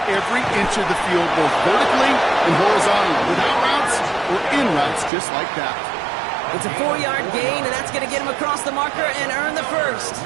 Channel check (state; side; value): drops out; left; at 5.1 s